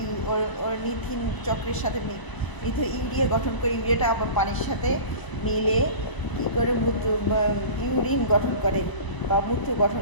অর্নিথিন চক্রের সাথে ইউরিয়া গঠন করে। ইউরিয়াটা আবার পানির সাথে মিলে কী করে ইউরিন গঠন করে বা মূত্র গঠন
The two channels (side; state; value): right; late; 1.0 ms